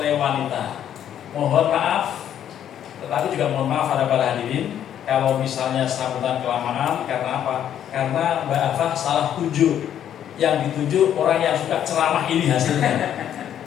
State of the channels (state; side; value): quieter; right; 10.1 dB